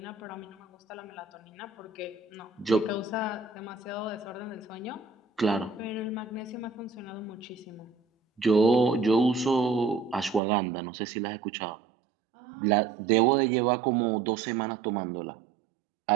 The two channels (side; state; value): left; drops out; at 10.4 s